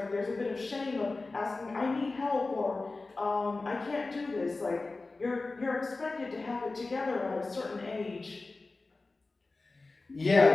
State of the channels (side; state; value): right; quieter; 3.5 dB